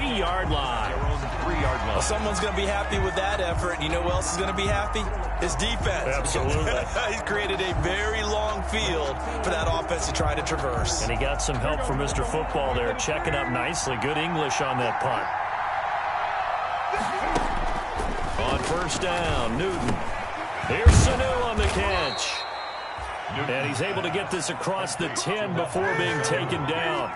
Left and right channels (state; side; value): identical; both; correlation 1.00